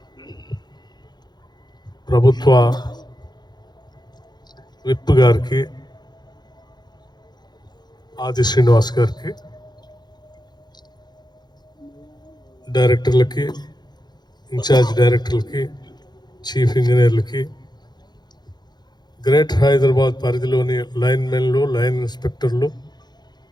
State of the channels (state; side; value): late; right; 0.21 ms